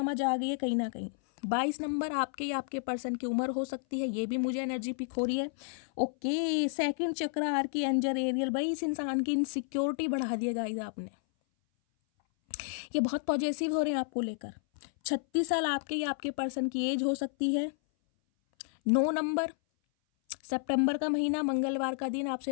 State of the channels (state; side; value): silent; right; 57 dB below the other